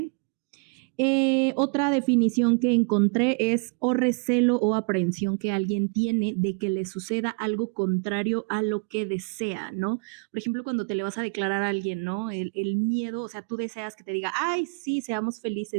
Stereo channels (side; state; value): left; quieter; 37.1 dB